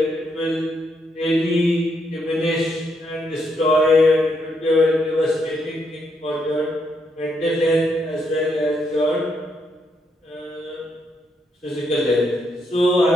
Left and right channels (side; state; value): both; normal; correlation 0.77